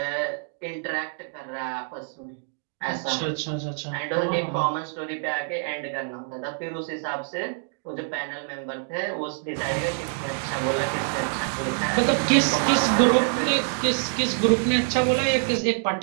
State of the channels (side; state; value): left; silent; 61 dB below the other